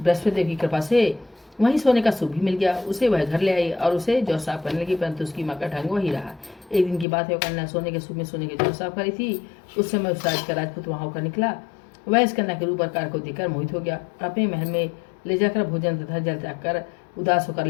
बृहस्पति देव की कृपा से वहीं सोने का सूप भी मिल गया। उसे वह घर ले आई और उसे जौ साफ करने लगी, परंतु उसकी माँ का ढंग वही रहा। एक दिन की बात है, वो कन्या सोने के सूप में सोने के जौ साफ करी थी। उस समय उस राज का राजपूत वहां होकर निकला। वह इस कन्या के रूप आकार को देखकर मोहित हो गया। अपने महल में ले जाकर भोजन तथा जल त्याग कर उदास होकर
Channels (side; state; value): right; drops out; at 7.1 s